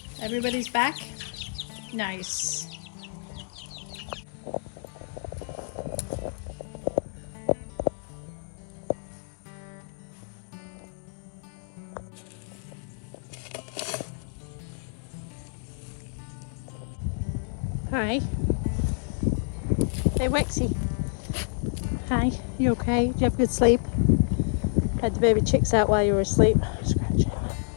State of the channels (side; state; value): right; silent; digital silence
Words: Everybody's back? Nice. Hi. Hey Wexy. Hi, you okay? Did you have a good sleep? Had the baby chicks out while you were asleep. Scratching.